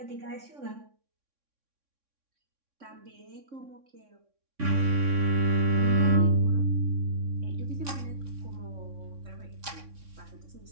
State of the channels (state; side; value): late; left; 3.6 ms